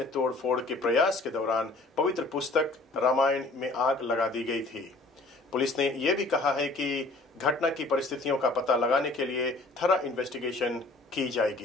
तोड़फोड़ के प्रयास के दौरान पवित्र पुस्तक रामायण में आग लगा दी गई थी। पुलिस ने यह भी कहा है कि घटना की परिस्थितियों का पता लगाने के लिए थरा इन्वेस्टिगेशन की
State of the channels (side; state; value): right; quieter; 3.0 dB